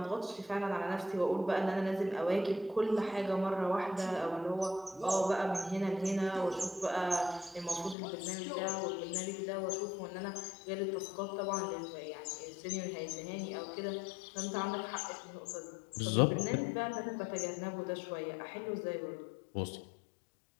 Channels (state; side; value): drops out; right; at 8.0 s